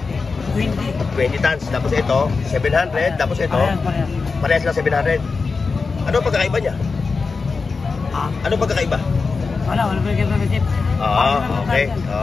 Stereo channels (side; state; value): right; quieter; 4.5 dB